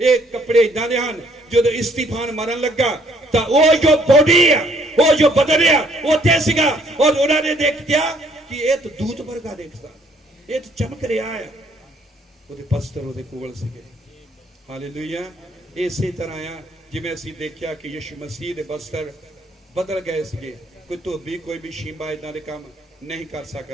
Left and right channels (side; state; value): both; normal; correlation 0.64